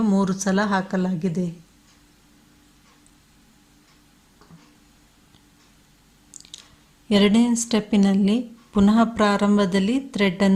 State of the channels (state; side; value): identical; both; correlation 1.00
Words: 3 ಸಲ ಹಾಕಲಾಗಿದೆ. ಎರಡನೇ ಸ್ಟೆಪ್ಪಿನಲ್ಲಿ ಪುನಃ ಪ್ರಾರಂಭದಲ್ಲಿ